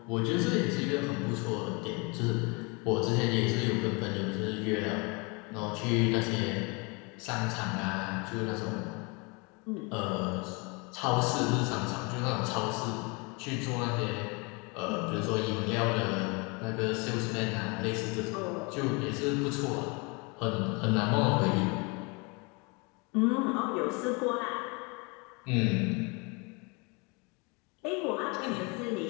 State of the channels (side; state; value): right; quieter; 29.9 dB